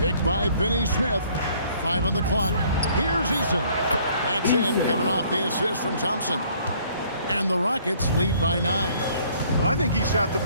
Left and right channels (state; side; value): inverted; both; correlation -0.59